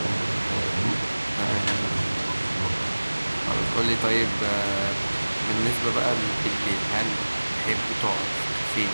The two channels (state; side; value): inverted; both; correlation -1.00